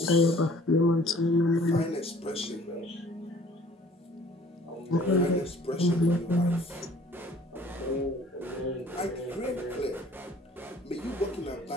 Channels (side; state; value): both; normal; correlation 0.53